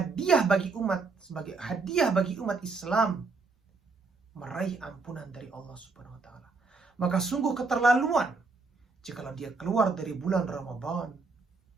bagi umat Islam meraih ampunan dari Allah Subhanahu wa ta'ala. Maka sungguh keterlaluan jikalau dia keluar dari bulan Ramadan,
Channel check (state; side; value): quieter; left; 4.1 dB